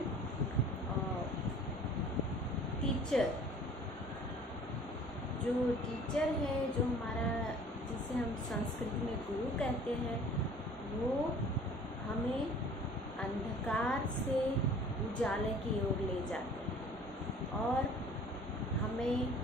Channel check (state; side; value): normal; both; correlation 0.49